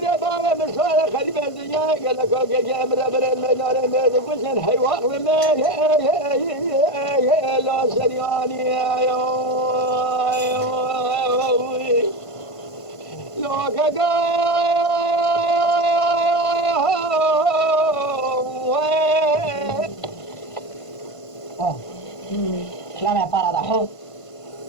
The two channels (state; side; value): late; right; 1.5 ms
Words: من صار خريب الدنيا قال لك اوكي جامر بر المدار ميد بسن حيوان ما لا سرياني يا لو لا me para da ho